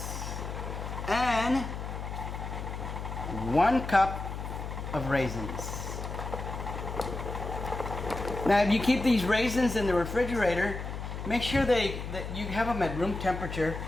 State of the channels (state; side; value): noise; left; hum, 6 dB below the sound